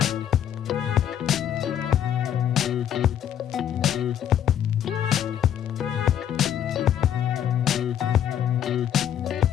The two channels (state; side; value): quieter; right; 9.8 dB